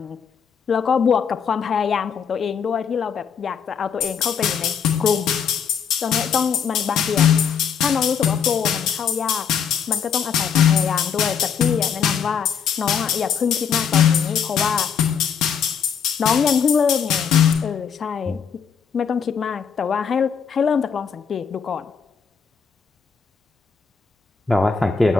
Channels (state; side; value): quieter; right; 7.0 dB